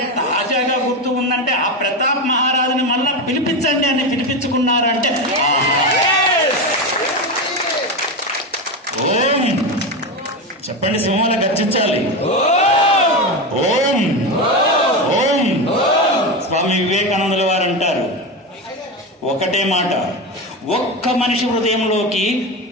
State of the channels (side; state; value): both; normal; correlation 0.17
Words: తాజాగా గుర్తు ఉందంటే, ఆ ప్రతాప్ మహారాజుని మళ్ళా పిలిపించండి అని పిలిపించుకున్నారంటే, ఓం చెప్పండి, సింహాల గర్జించాలి. ఓం ఓం. స్వామి వివేకానందుల వారు అంటారు ఒకటే మాట, ఒక్క మనిషి హృదయంలోకి